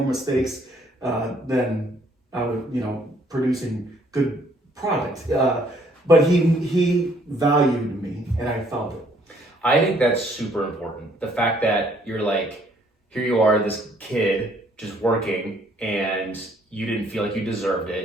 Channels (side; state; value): both; normal; correlation 0.64